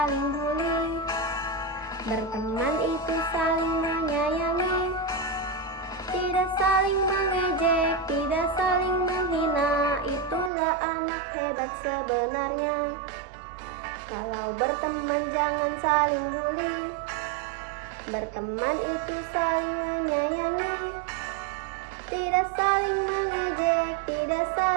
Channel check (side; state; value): left; drops out; at 10.5 s